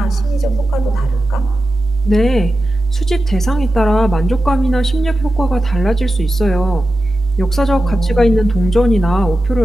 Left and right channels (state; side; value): normal; both; correlation 0.92